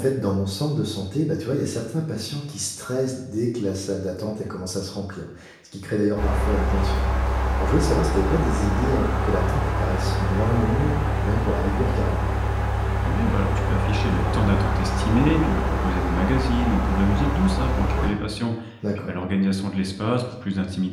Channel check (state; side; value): identical; both; correlation 1.00